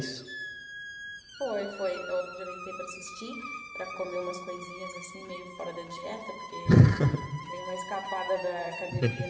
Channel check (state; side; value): identical; both; correlation 1.00